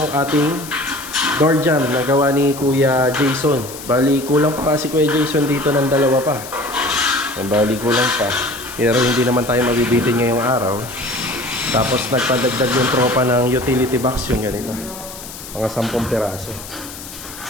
ating door jamb na gawa ni Kuya Jason. Bali kulang pa si Kuya Jason dito ng 2 pa. Yan, bali kulang pa. Pero hindi naman tayo mabibitin ngayong araw. Tapos nagpadagdag yung tropa ng utility box yung ganito. Mga 10 piraso.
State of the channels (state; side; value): noise; left; hiss, 13 dB below the sound